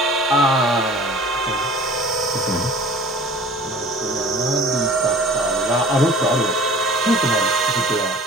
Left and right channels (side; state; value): both; normal; correlation 0.45